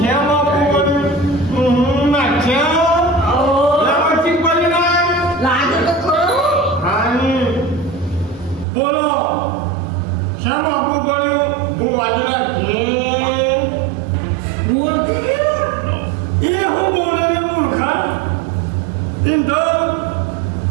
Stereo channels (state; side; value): drops out; left; at 8.7 s